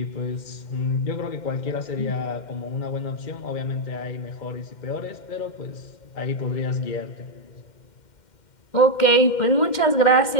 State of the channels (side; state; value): right; late; 2.1 ms